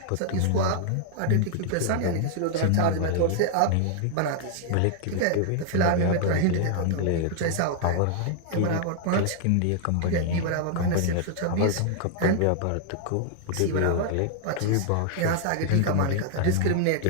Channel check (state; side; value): different; both; correlation 0.00